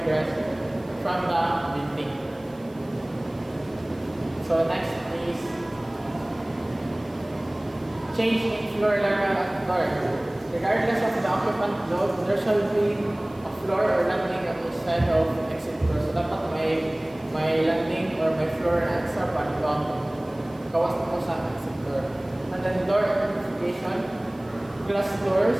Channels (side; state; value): right; noise; hiss, 29 dB below the sound